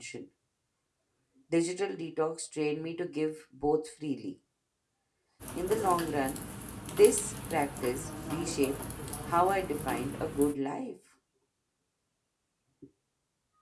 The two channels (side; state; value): both; identical; correlation 1.00